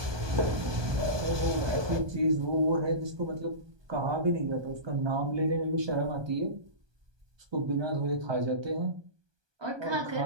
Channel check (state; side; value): late; left; 1.2 ms